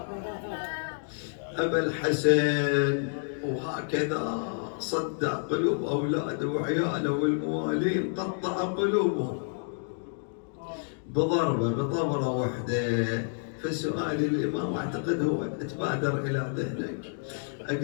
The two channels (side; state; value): right; silent; digital silence